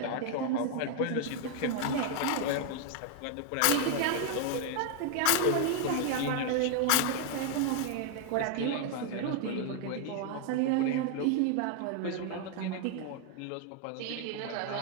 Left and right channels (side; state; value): both; different; correlation 0.00